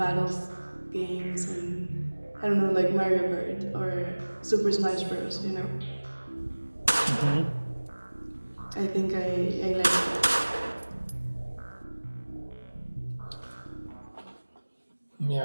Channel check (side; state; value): both; inverted; correlation -1.00